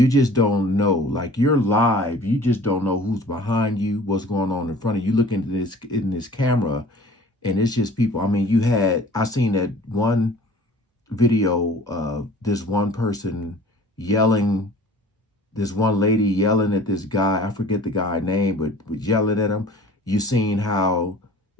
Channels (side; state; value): both; normal; correlation 0.46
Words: just don't know. Like, you're live, you just don't know who's behind you, what's going on in front of you. Look into this in this camera, and it's just people. I mean, I seen that one video of this one person yelling, this one lady yelling at this guy. I forget the guy's name, but yelling at him. You seen how